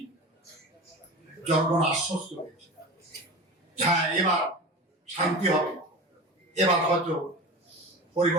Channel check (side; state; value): both; normal; correlation 0.31